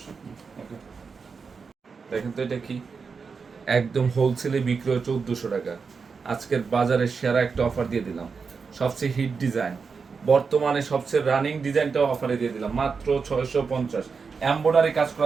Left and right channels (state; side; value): quieter; left; 5.2 dB